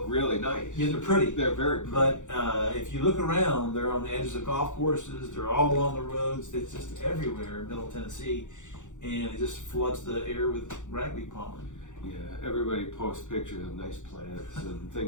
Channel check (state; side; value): late; right; 0.85 ms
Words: really nice. Yeah, they're pretty. They're very pretty. But if you look around, they're on the edges of golf courses. They're all along the roads. It's just everywhere in Middle Tennessee, and it just floods the air with ragweed pollen. Yeah, everybody posts pictures of nice plants and